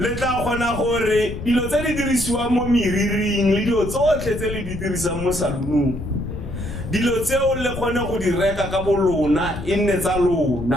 tla kgona gore dilo tse di dirisiwang mo meriring le dilo tsotlhe tse le di dirisang mo saloonong dilo tseo le kgone go di reka ka bolona e nne tsa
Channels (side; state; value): left; noise; rumble, 8 dB below the sound